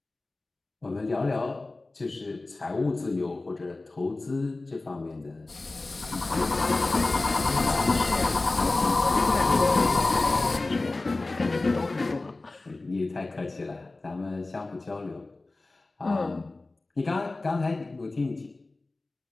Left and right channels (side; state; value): right; quieter; 3.2 dB